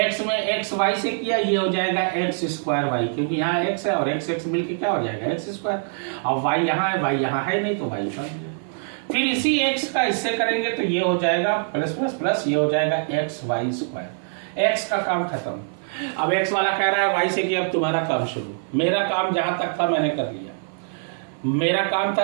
में xy से किया, ये हो जाएगा x²y, क्योंकि यहाँ x है और x मिलके क्या हो जाएगा x²। और y यहाँ है, y यहाँ है नहीं, तो y बन गया। फिर इसी x का इससे करेंगे तो ये हो जाएगा प्लस प्लस प्लस, ये हो जाएगा xy²। x का काम खत्म। अब x वाला कह रहा है y से किया, अब तुम्हारा काम शुरू। मेरा काम जहां तक था मैंने कर लिया। मेरा काम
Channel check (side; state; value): left; silent; 56 dB below the other